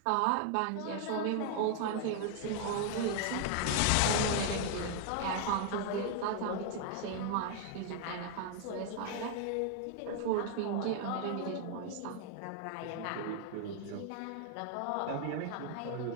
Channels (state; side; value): different; both; correlation 0.00